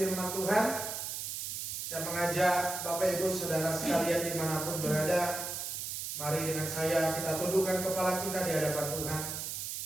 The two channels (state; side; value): noise; right; hiss, 4 dB below the sound